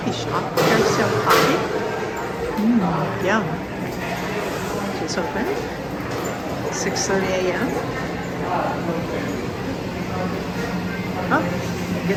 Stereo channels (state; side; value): identical; both; correlation 1.00